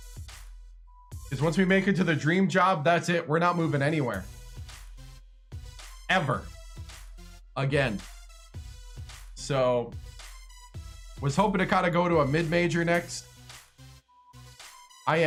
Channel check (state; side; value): identical; both; correlation 1.00